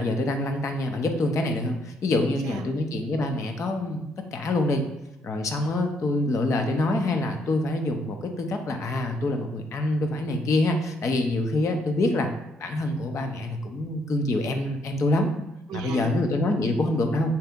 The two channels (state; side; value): normal; both; correlation 0.72